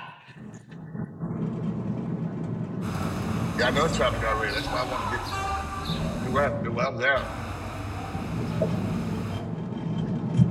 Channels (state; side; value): identical; both; correlation 1.00